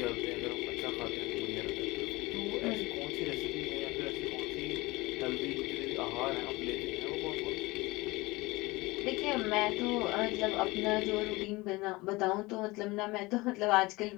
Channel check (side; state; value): right; quieter; 22.1 dB